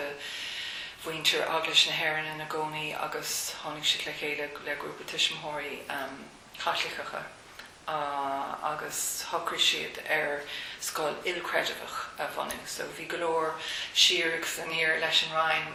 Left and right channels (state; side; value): identical; both; correlation 1.00